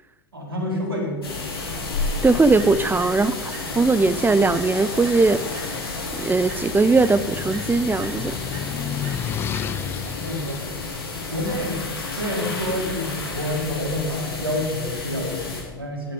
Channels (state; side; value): normal; both; correlation 0.60